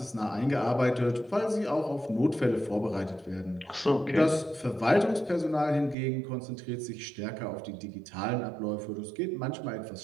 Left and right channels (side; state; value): left; drops out; at 6.0 s